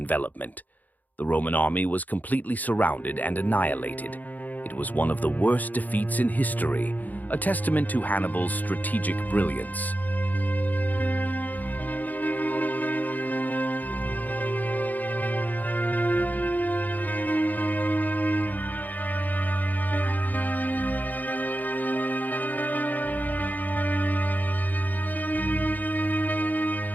The Roman army was completely surrounded and annihilated. It was one of the worst defeats in history, a testament to Hannibal's strategic brilliance.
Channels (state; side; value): late; right; 0.081 ms